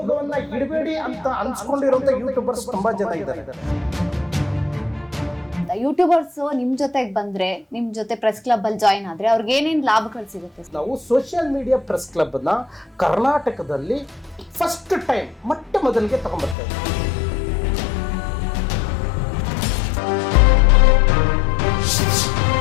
ಇಡಬೇಡಿ ಅಂತ ಅನ್ಸ್ಕೊಂಡಿರುವಂತ ಯೂಟ್ಯೂಬರ್ಸ್ ತುಂಬಾ ಜನ ಇದ್ದಾರೆ. ಯೂಟ್ಯೂಬರ್ಸ್ ನಿಮ್ ಜೊತೆಗೆ ಬಂದ್ರೆ ನಿಮ್ ಜೊತೆ ಪ್ರೆಸ್ ಕ್ಲಬ್ ಅಲ್ಲಿ ಜಾಯಿನ್ ಆದ್ರೆ ಅವ್ರಿಗೆ ಏನೇನ್ ಲಾಭಗಳು ಸಿಗುತ್ತೆ? ನಾವು ಸೋಷಿಯಲ್ ಮೀಡಿಯಾ ಪ್ರೆಸ್ ಕ್ಲಬ್ ನ ಕರ್ನಾಟಕದಲ್ಲಿ ಫಸ್ಟ್ ಟೈಮ್ ಮೊಟ್ಟ ಮೊದಲಿಗೆ ತಗೊಂಡ್ಬರ್ತೇವೆ.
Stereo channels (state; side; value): drops out; right; at 16.6 s